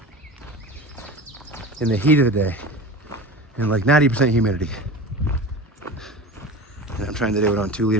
in the heat of the day and like 90% humidity. And I'm trying to do it on 2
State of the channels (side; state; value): both; normal; correlation 0.32